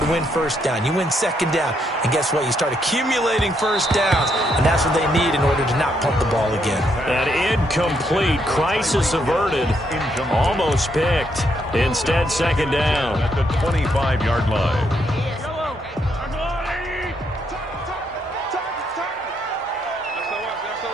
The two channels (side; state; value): both; normal; correlation 0.75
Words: to win 1st down. You win 2nd down. And guess what? You start accumulating 1st downs. And that's what they need in order to not pump the ball again. An incomplete. Crisis averted. Almost picked. Instead, 2nd down. At the 25-yard line.